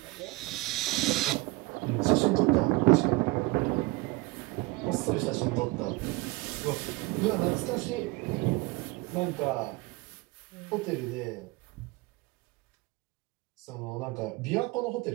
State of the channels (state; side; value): quieter; left; 23.2 dB